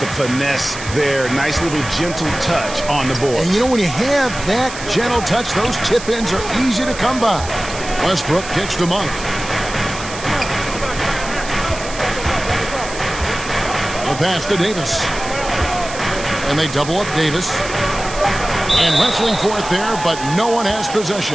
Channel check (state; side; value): noise; right; hiss, 12 dB below the sound